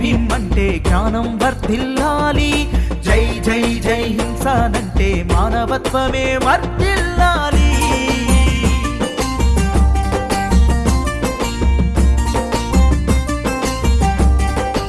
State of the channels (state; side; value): identical; both; correlation 1.00